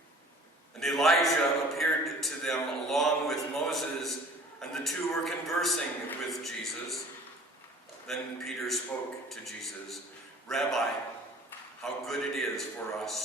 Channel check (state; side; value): normal; both; correlation 0.49